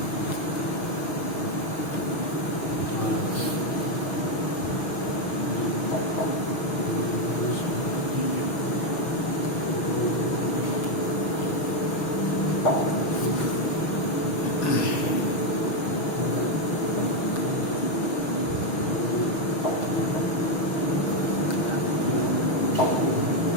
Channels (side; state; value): right; late; 6.4 ms